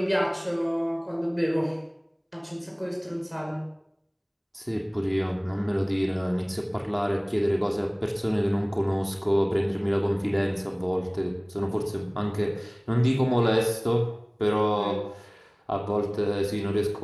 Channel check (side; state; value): both; identical; correlation 1.00